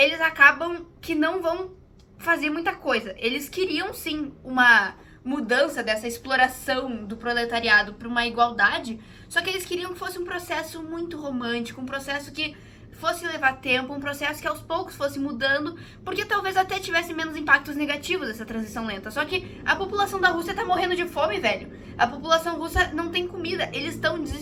acabam que não vão fazer muita coisa. Eles queriam, sim, uma mudança, dessa exploração do proletariado para uma igualdade, só que eles queriam que fosse um processo muito romântico, um processo que fosse levar tempo, um processo que aos poucos fosse mudando, porque talvez até tivesse menos impactos negativos essa transição lenta. Só que a população da Rússia tá morrendo de fome, velho. A população russa não tem comida, eles estão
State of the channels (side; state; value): both; identical; correlation 1.00